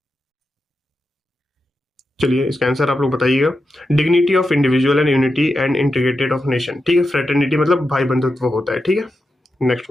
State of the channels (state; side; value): normal; both; correlation 0.88